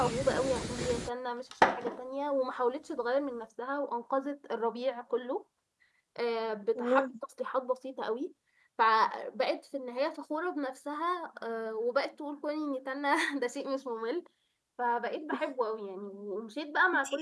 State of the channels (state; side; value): identical; both; correlation 1.00